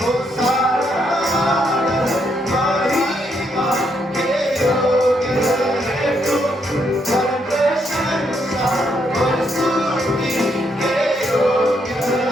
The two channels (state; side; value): normal; both; correlation 0.76